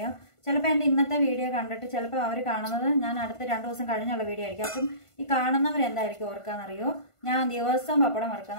ചിലപ്പോൾ എൻ്റെ ഇന്നത്തെ വീഡിയോ കണ്ടിട്ട് ചിലപ്പോൾ അവർ കാണുന്നത് ഞാൻ അടുത്ത 2 ദിവസം കഴിഞ്ഞുള്ള വീഡിയോ ആയിരിക്കും. അപ്പം ഈ കാണുന്നവരെന്തായിരിക്കും ഓർക്കാന്നറിയോ, ഞാൻ ദിവസവും പപ്പടം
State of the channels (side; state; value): right; late; 1.5 ms